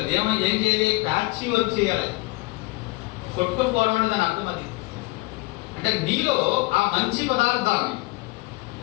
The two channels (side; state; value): right; quieter; 23.6 dB